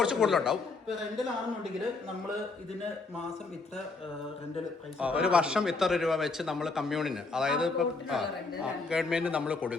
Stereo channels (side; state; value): right; quieter; 3.9 dB